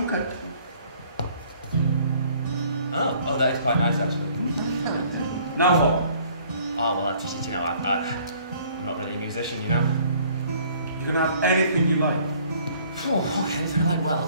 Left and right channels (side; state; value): both; inverted; correlation -0.57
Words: Okay. Oh, that is quite nice, actually. Now what? Oh, well, you know, I'm not really a musician, you know. You can have anything you like. Oh, okay, anything I like.